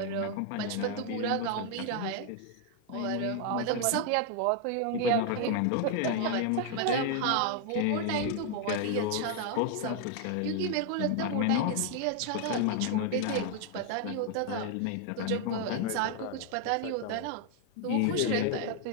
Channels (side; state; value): both; different; correlation 0.00